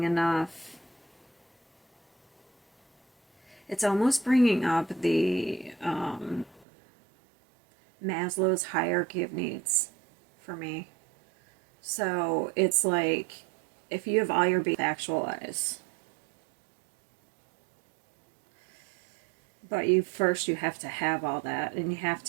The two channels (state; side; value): drops out; left; at 6.7 s